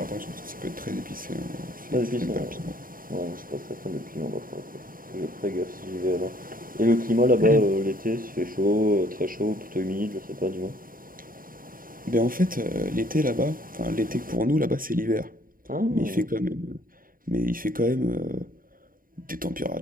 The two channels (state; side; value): late; left; 0.41 ms